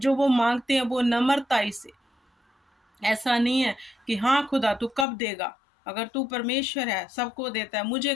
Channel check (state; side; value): drops out; right; at 5.1 s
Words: वो माँगते हैं वो नम्रताई से। ऐसा नहीं है कि हाँ खुदा तू कब देगा? अगर तू परमेश्वर है, सबको देता है, मुझे